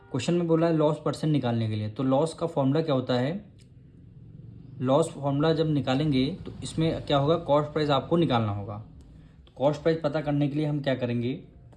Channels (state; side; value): identical; both; correlation 1.00